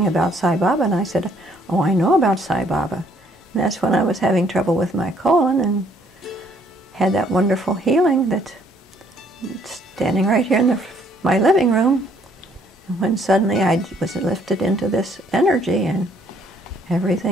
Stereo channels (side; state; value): both; normal; correlation 0.64